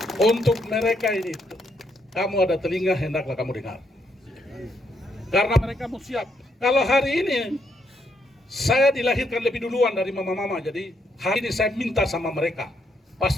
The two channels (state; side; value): normal; both; correlation 0.76